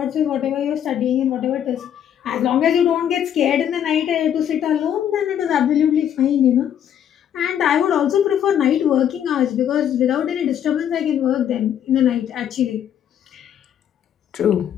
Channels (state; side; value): quieter; right; 9.6 dB